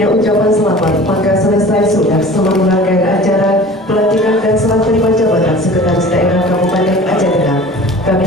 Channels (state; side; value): normal; both; correlation 0.42